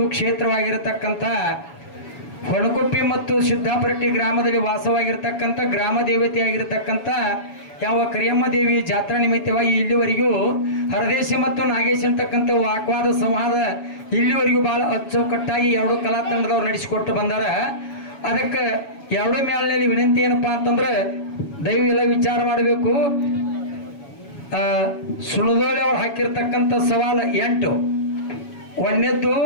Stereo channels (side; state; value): right; late; 7.1 ms